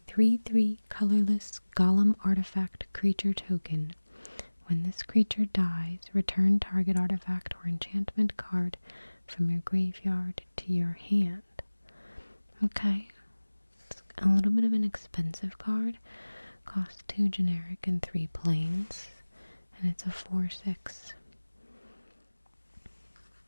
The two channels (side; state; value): both; inverted; correlation -1.00